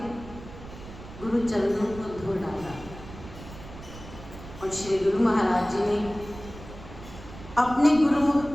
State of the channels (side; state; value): right; noise; rumble, 15 dB below the sound